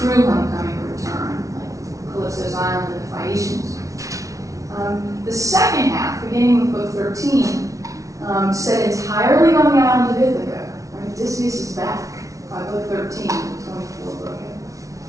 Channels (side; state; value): left; late; 0.16 ms